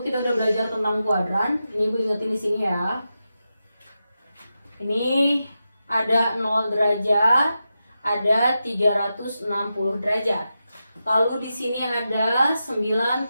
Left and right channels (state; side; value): inverted; both; correlation -0.90